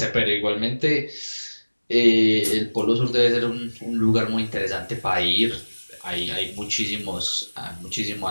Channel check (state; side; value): inverted; both; correlation -1.00